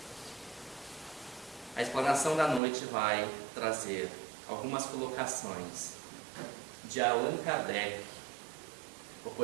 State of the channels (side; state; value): left; drops out; at 2.6 s